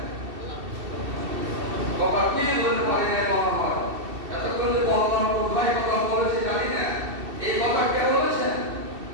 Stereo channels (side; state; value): left; late; 2.7 ms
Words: কথা কি বলতে পারি না বলা হয়। এতক্ষণ যে বললাম কোথায় কথা বলেছি জানি না, এই কথা কে বলেছেন?